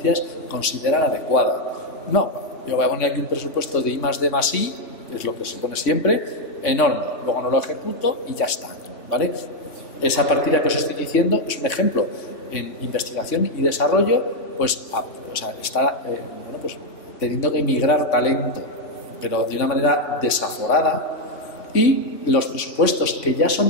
considera adecuada. No, yo voy a poner aquí un presupuesto de I+D+I, que es lo que se pone siempre, enorme. Luego no lo ejecuto y ya está, ¿vale? Esa partida que os estoy diciendo es un ejemplo. En investigación y desarrollo, pues está pues, teniendo que migrar talento, pero de una manera desaforada. Y los presupuestos que ya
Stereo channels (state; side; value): late; right; 3.5 ms